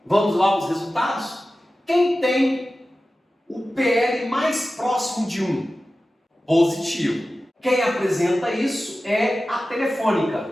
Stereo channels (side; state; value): both; normal; correlation 0.95